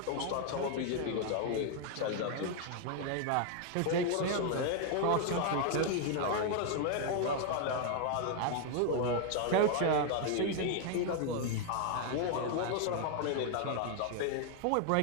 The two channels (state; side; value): different; both; correlation 0.00